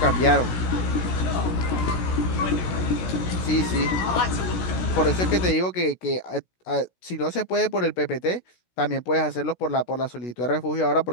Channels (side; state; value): right; late; 16 ms